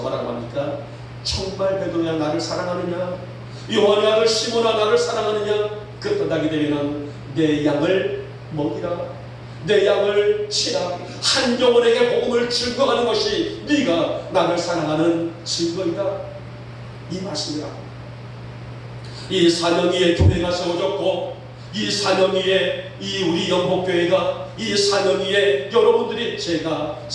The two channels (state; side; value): identical; both; correlation 1.00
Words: 뭐라고 합니까? 정말 베드로야 나를 사랑하느냐? 요한의 아들 시몬아 나를 사랑하느냐? 그렇다게 되면 내 양을 먹이라, 내 양을 치라. 한 영혼에게 복음을 증거하는 것이 네가 나를 사랑하는 증거이다. 이 말씀이라. 이 4년 위에 교회가 세워졌고, 이 4년 위에 이 우리 영복교회가, 이 4년 위에 여러분들이 제가